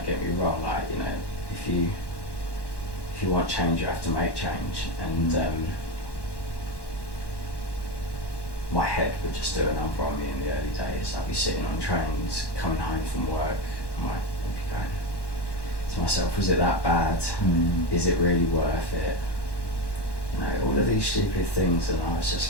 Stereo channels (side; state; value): right; late; 1.1 ms